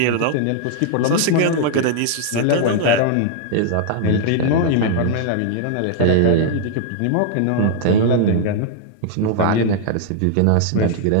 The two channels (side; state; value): both; different; correlation -0.01